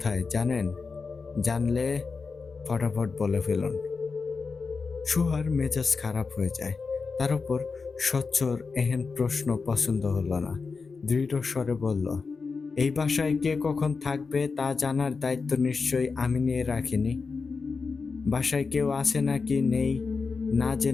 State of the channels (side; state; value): right; quieter; 4.7 dB